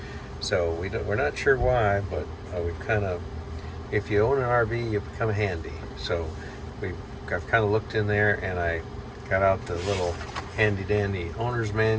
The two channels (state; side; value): identical; both; correlation 1.00